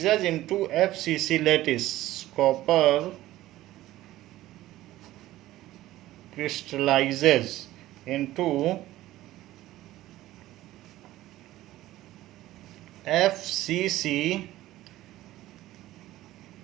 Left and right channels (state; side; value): quieter; left; 15.6 dB